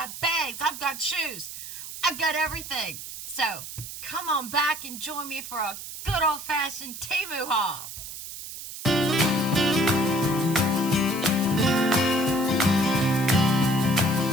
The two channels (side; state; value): right; noise; hiss, 10 dB below the sound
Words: bags. I've got shoes. I've got everything. So come on back and join me for a good old-fashioned Temu haul.